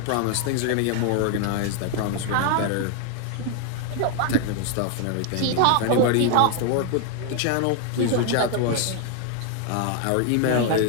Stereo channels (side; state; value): both; different; correlation 0.00